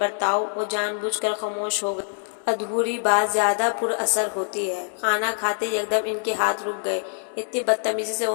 وہ جان بوجھ کر خاموش ہو گئی۔ ادھوری بات زیادہ پر اثر ہوتی ہے۔ کھانا کھاتے یکدم ان کے ہاتھ رک گئے۔ اتنی بدتمیزی سے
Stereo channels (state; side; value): silent; right; 62 dB below the other